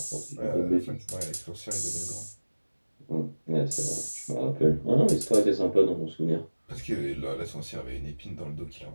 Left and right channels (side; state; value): both; inverted; correlation -1.00